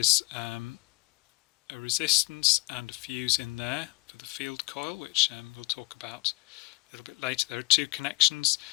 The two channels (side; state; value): right; quieter; 21.8 dB